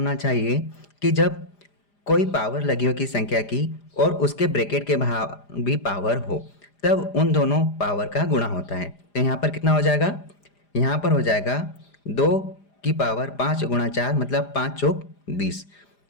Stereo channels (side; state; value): right; late; 4.9 ms